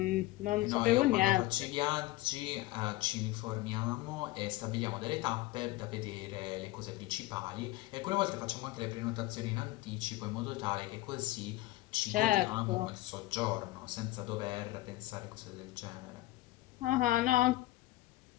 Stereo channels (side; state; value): right; quieter; 18.0 dB